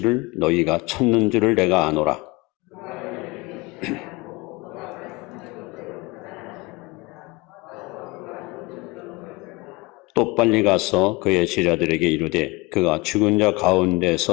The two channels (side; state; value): right; quieter; 23.6 dB